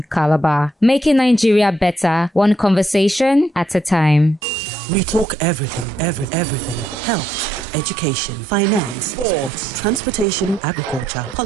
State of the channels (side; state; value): both; normal; correlation 0.76